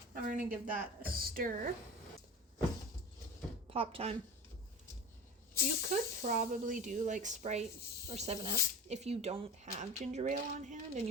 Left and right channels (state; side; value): normal; both; correlation 0.33